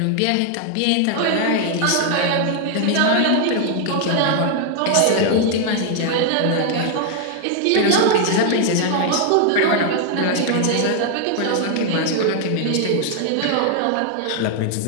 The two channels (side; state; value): both; different; correlation 0.00